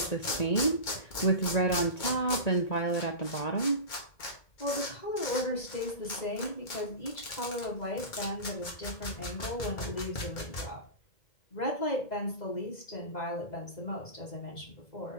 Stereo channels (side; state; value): right; late; 2.2 ms